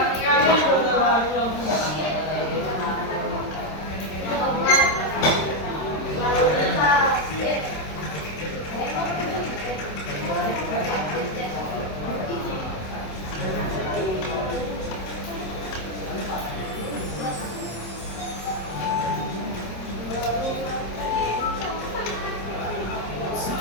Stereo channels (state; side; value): late; right; 26 ms